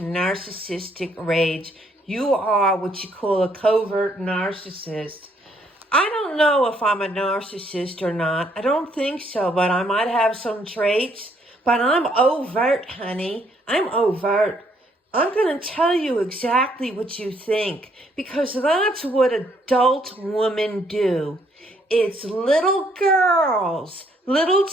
rage. You are what you call a covert narcissist. I don't know if I'm a narcissist or not. I don't think so, but I might have some traits. But I'm overt, honey. I'm overt. I'm going to tell you exactly what you think, because that's what adult women do. It's little girls, little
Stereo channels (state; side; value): normal; both; correlation 0.69